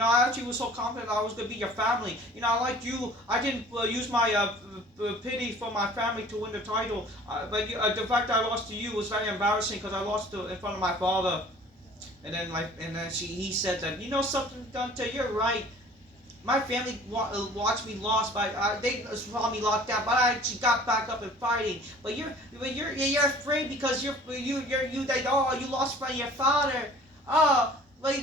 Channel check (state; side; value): normal; both; correlation 0.49